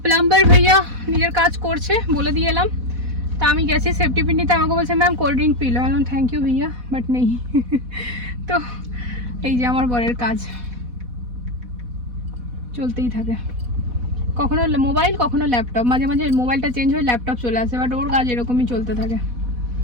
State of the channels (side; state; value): left; late; 4.1 ms